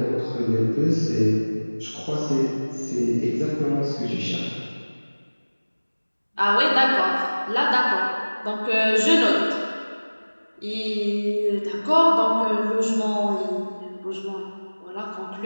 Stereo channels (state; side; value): inverted; both; correlation -1.00